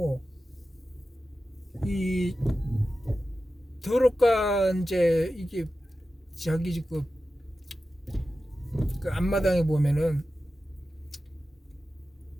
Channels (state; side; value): normal; both; correlation 0.93